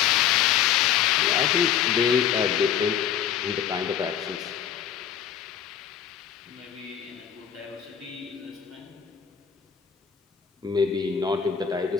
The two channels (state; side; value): quieter; right; 8.9 dB